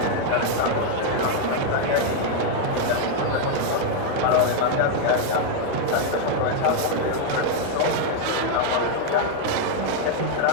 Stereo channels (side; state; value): both; different; correlation 0.00